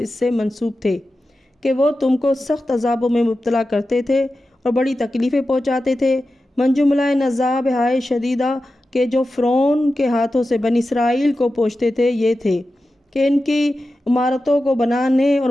اس سے منسوب تھے کہ وہ تم کو سخت عذابوں میں مبتلا کرتے تھے اور بڑی تکلیفیں پہنچاتے تھے۔ من جملہ ان عذاب ہائے شدیدہ کہ جو فرعون کے ہاتھوں سے بنی اسرائیل کو پہنچتے تھے یہ تھے کہ ان کی عمارتوں کو بنانے اور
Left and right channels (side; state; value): both; normal; correlation 0.92